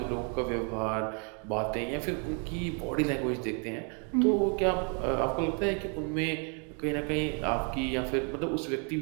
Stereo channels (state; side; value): quieter; left; 38.7 dB